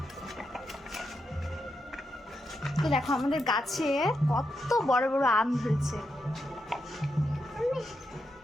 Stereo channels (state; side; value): normal; both; correlation 0.84